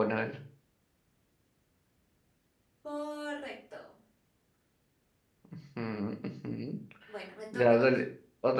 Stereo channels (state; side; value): identical; both; correlation 1.00